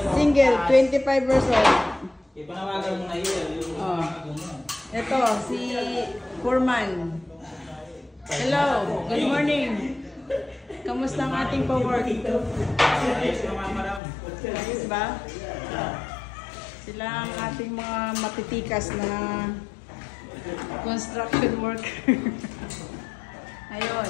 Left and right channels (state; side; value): drops out; right; at 14.0 s